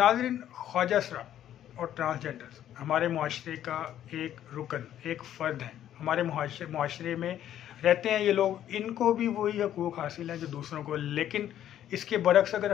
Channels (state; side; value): quieter; right; 11.2 dB